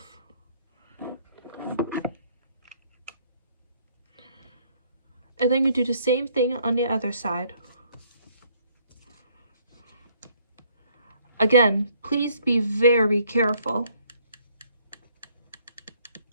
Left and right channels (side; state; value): both; inverted; correlation -0.64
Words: And then you do the same thing on the other side. Again, please be very careful.